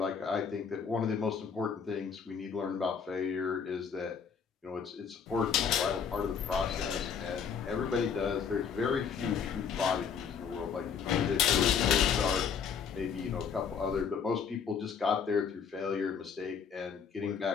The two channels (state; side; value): quieter; right; 6.7 dB